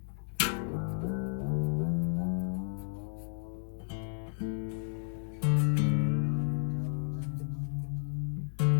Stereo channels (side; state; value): right; silent; digital silence